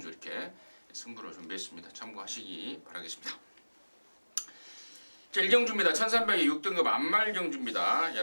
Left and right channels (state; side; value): inverted; both; correlation -1.00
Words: 이렇게 승부를 준비했습니다. 참고하시기 바라겠습니다. 자, 1경주입니다. 1300에 6등급 안말경주입니다.